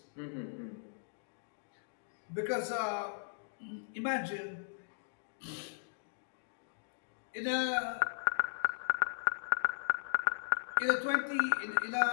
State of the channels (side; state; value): right; silent; digital silence